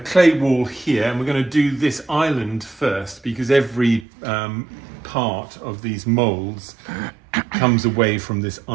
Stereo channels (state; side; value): drops out; left; at 4.0 s